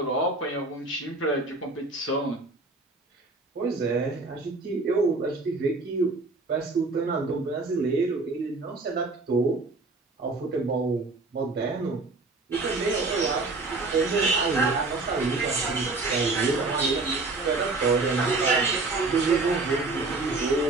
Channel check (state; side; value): quieter; left; 3.4 dB